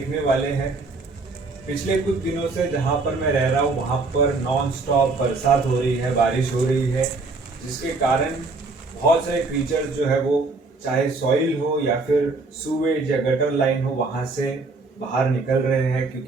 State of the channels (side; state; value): left; quieter; 3.7 dB